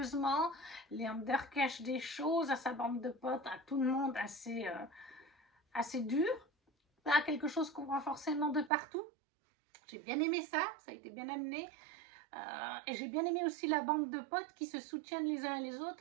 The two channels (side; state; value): left; drops out; at 8.7 s